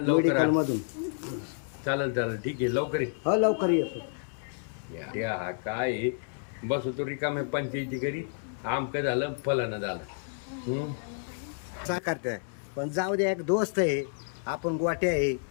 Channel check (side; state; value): right; silent; 58 dB below the other